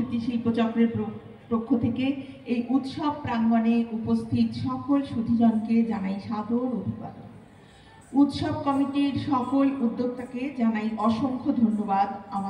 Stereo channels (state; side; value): identical; both; correlation 1.00